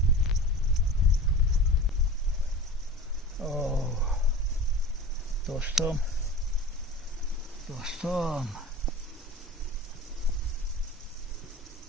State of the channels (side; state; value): both; normal; correlation 0.36